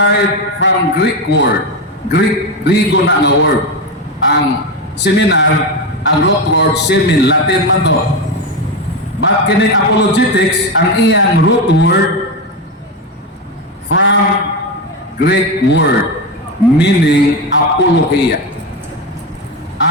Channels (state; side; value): normal; both; correlation 0.14